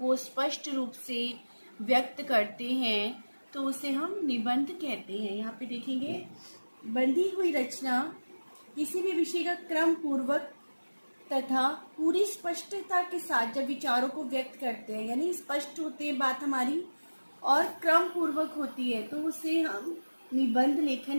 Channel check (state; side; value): inverted; both; correlation -1.00